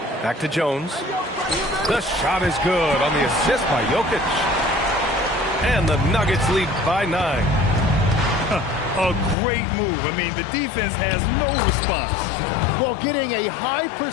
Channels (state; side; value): drops out; right; at 9.3 s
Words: Back to Jones. The shot is good on the assist by Jokic. And the Nuggets lead by 9. A great move. I mean, the defense has no response. Well, getting a high